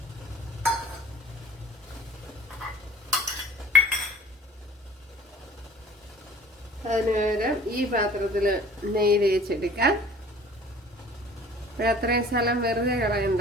അതിന് പകരം ഈ പാത്രത്തിൽ നെയ്യ് തേച്ചെടുക്കാം. അത്രയും സ്ഥലം വെറുതെ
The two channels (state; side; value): normal; both; correlation 0.48